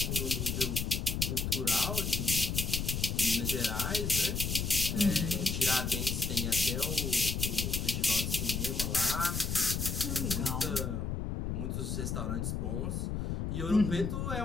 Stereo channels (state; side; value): noise; left; rumble, 2 dB below the sound